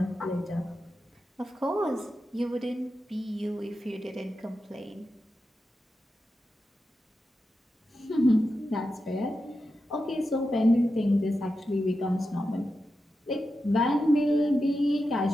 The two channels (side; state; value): both; normal; correlation 0.90